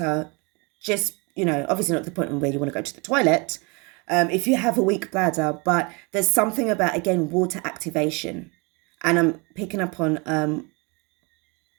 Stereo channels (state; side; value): quieter; left; 29.7 dB